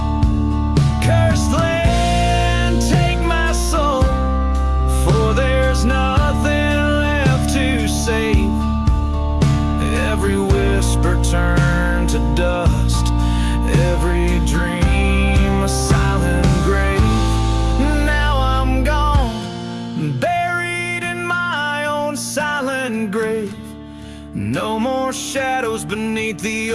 Cursed land, take my soul, for there's nothing left to save. Every whisper turned to dust, every dream a silent grave. Now I'm gone, buried in my own silent grave. No more shadows beneath the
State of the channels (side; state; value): both; identical; correlation 1.00